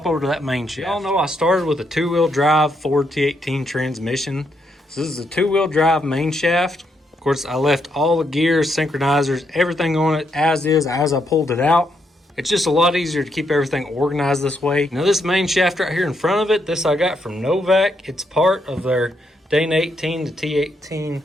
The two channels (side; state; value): both; normal; correlation 0.78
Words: over to that main shaft. Y'all know I started with a two-wheel drive Ford T18 transmission. So this is a two-wheel drive main shaft. Of course, I left all the gears, synchronizers, everything on it as is as I pulled it out. It's just a lot easier to keep everything organized this way. Now this main shaft right here in front of it, this I got from Novak. It's part of their Dane 18 to T18